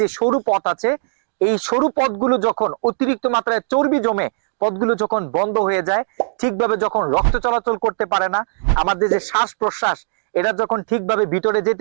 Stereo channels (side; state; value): left; silent; digital silence